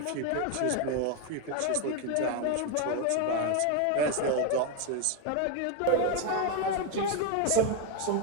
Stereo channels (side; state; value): both; different; correlation 0.01